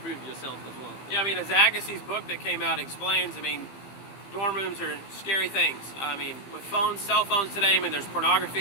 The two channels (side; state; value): right; late; 15 ms